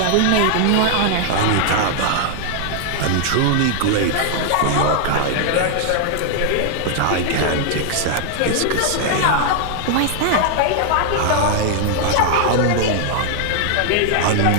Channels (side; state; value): both; different; correlation 0.00